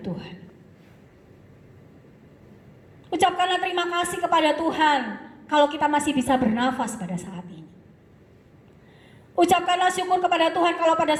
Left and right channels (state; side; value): identical; both; correlation 1.00